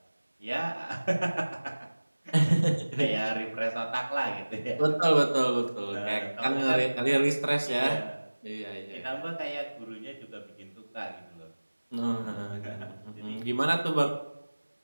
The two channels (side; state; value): both; inverted; correlation -1.00